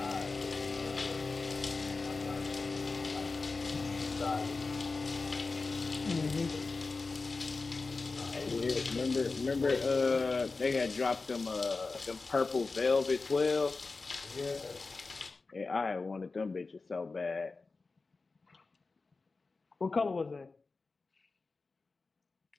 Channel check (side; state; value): right; quieter; 3.9 dB